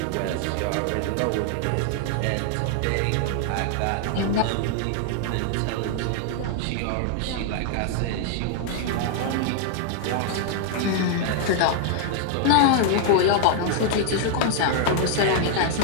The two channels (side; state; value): both; different; correlation 0.00